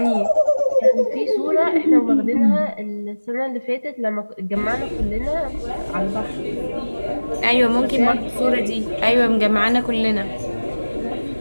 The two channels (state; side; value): inverted; both; correlation -1.00